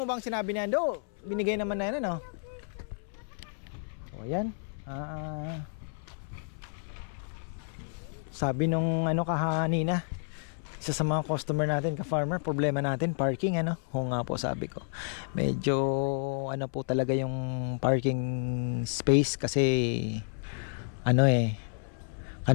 bang sinabi ni Ando? Binigay naman na yan O ayan. Sabi nung kahanina, isa sa mga customer natin, ka-farmer, problema natin parking Oo nga po, sabi ko. Medyo po talaga yung parking space kasi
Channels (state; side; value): silent; right; 57 dB below the other